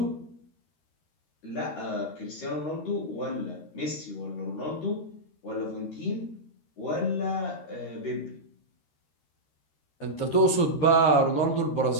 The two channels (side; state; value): right; late; 13 ms